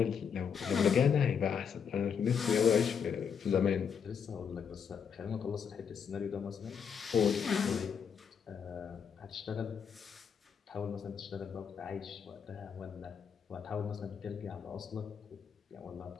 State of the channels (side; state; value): right; quieter; 7.0 dB